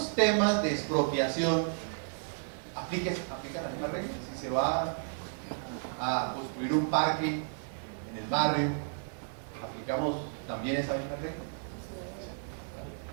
temas de expropiación aplica la misma regla? Si se va a construir un parque en el barrio, ¿aplicamos también esa misma regla?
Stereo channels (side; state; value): left; silent; digital silence